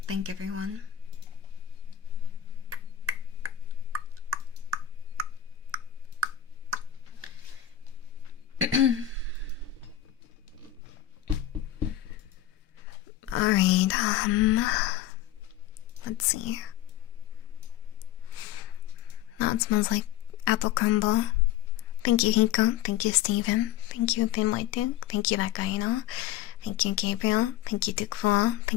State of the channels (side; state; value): right; quieter; 11.8 dB